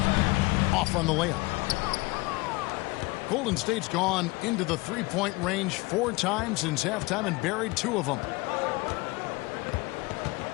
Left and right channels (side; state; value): right; quieter; 23.6 dB